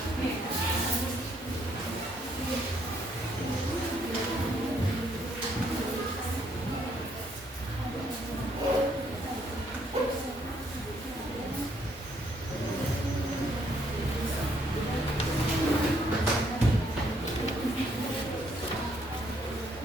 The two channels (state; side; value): normal; both; correlation 0.69